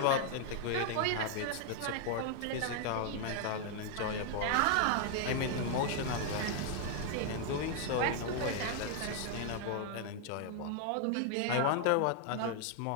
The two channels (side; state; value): both; different; correlation 0.00